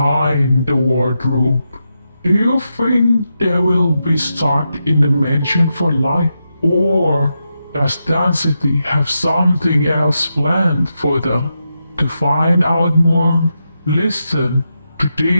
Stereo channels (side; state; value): both; inverted; correlation -0.87